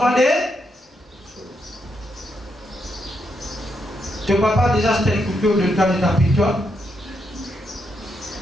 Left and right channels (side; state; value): both; normal; correlation 0.80